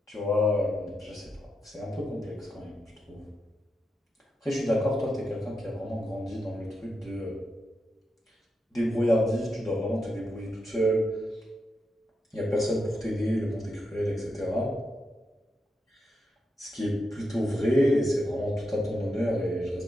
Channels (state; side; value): normal; both; correlation 0.85